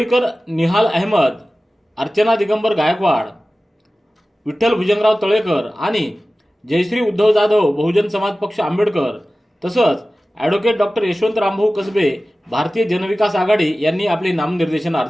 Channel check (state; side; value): normal; both; correlation 0.96